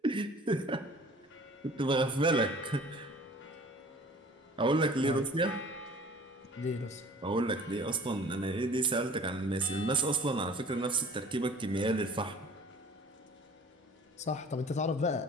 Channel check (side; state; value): both; normal; correlation 0.47